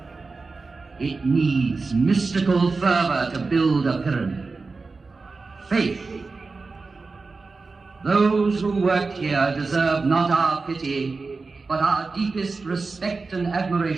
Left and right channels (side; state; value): left; quieter; 4.1 dB